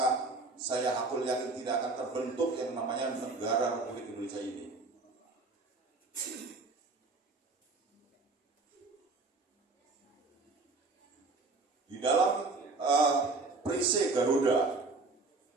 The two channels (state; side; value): quieter; left; 3.6 dB